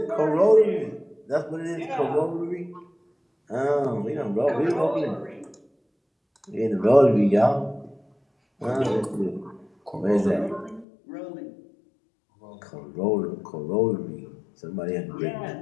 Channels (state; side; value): drops out; right; at 10.9 s